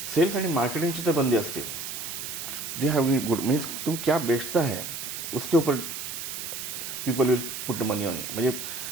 आणि मार्केटिंगची तर बंदी असते. दे हैव गुड, मीन्स तुम क्या बेचता है उसके ऊपर people will put money on, म्हणजे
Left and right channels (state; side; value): noise; right; hiss, 6 dB below the sound